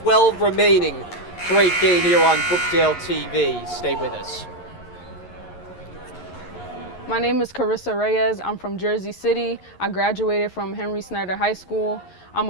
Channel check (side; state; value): right; late; 11 ms